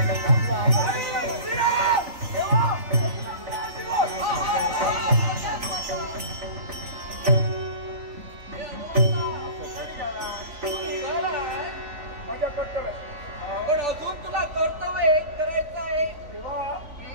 माझ्या कर्तव्य. पण अजून तुला कर्तव्य एक करायचं आहे. तेव्हा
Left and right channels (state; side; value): late; left; 3.5 ms